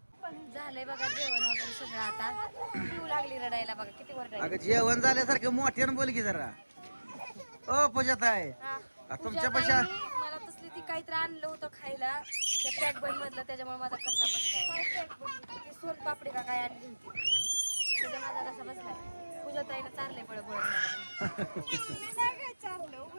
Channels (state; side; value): inverted; both; correlation -1.00